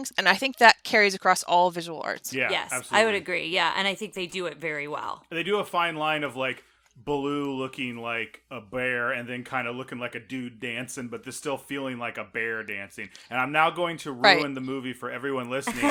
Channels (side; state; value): both; identical; correlation 1.00